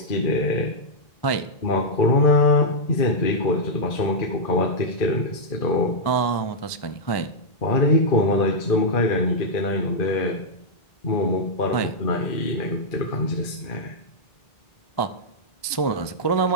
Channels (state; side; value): late; right; 1.2 ms